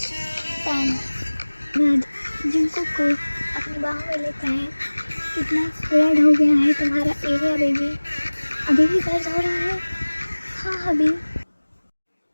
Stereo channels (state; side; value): inverted; both; correlation -1.00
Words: 10। बाद जंगकुक को अपनी बाहों में लेता है। कितना रेड हो गया है तुम्हारा एरिया बेबी, अभी भी दर्द हो रहा है? हाँ अभी